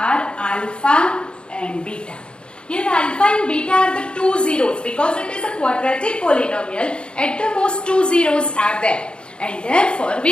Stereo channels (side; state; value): right; late; 0.054 ms